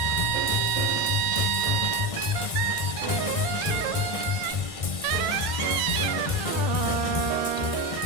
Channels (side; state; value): right; late; 1.6 ms